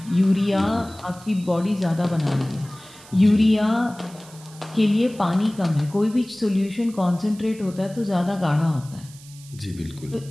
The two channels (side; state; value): right; noise; hiss, 21 dB below the sound